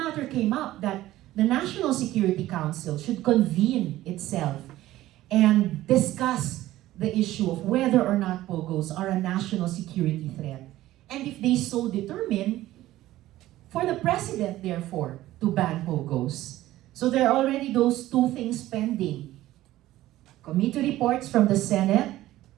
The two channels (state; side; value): quieter; left; 15.4 dB